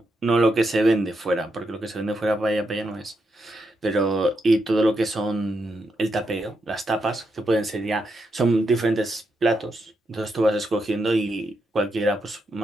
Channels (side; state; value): both; normal; correlation 0.83